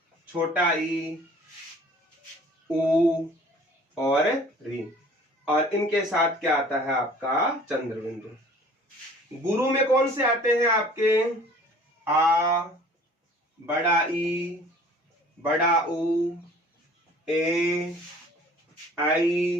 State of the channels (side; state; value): both; normal; correlation 0.50